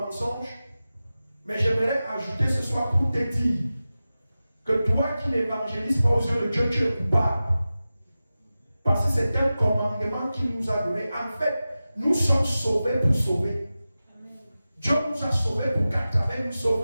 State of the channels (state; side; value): inverted; both; correlation -0.95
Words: Mais j'aimerais ajouter ce soir pour te dire que toi qui n'évangélises pas aux yeux de Dieu, tu es coupable. Parce que c'est un commandement qu'il nous a donné. En fait, nous sommes sauvés pour sauver. Dieu nous a sauvés pour qu'à travers nous